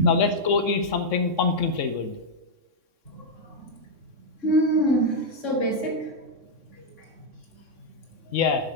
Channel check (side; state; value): left; late; 3.6 ms